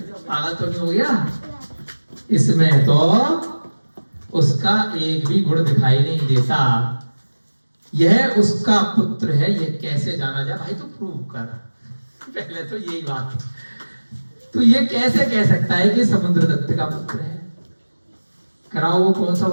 पागल तो नहीं हो गया? इसमें तो उसका एक भी गुण दिखाई नहीं देता, यह उसका पुत्र है, यह कैसे जाना जाए? भाई तो प्रूव कर पहले तो यही बात। तो ये कैसे कह सकता है कि समुद्रदत्त का पुत्र है? कराओ, वो कौन सा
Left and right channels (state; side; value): inverted; both; correlation -1.00